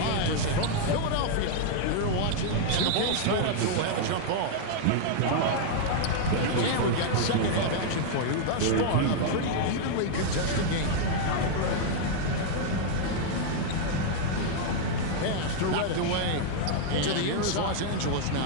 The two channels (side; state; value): both; different; correlation 0.00